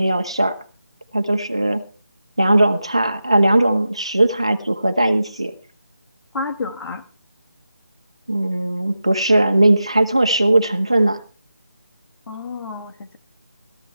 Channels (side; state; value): both; inverted; correlation -0.90